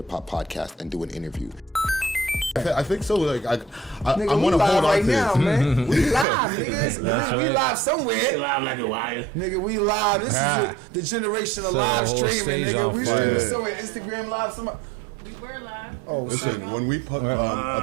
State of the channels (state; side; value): drops out; left; at 6.2 s